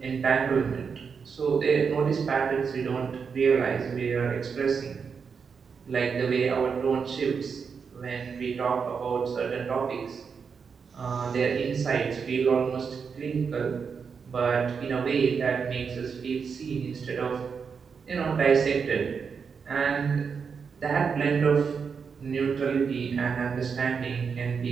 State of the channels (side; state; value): left; quieter; 6.0 dB